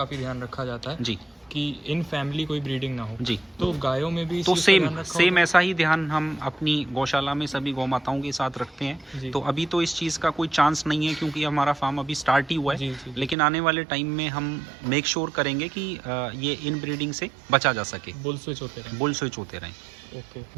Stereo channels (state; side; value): drops out; left; at 13.4 s